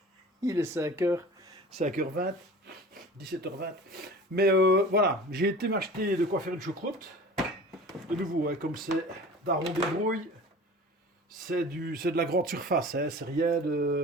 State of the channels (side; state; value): both; normal; correlation 0.40